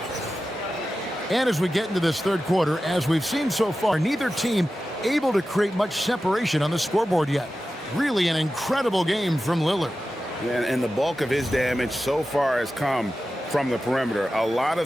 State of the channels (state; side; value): normal; both; correlation 0.93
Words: And as we get into this third quarter, as we've seen so far, neither team able to create much separation on the scoreboard yet. Really an incredible game from Lillard. And the bulk of his damage so far has come from the perimeter. A lot